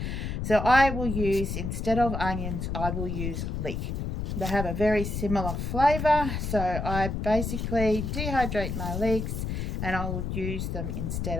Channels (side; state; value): left; noise; rumble, 3 dB below the sound